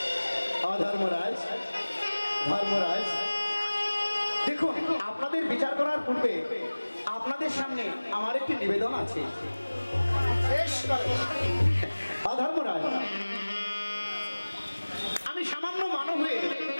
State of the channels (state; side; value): inverted; both; correlation -1.00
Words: অধর্মরাজ, ধর্মরাজ, দেখুন আপনাদের বিচার করার পূর্বে আপনাদের সামনে আমার একটি নিবেদন আছে। অধর্মরাজ, আমি সামান্য মানব হয়ে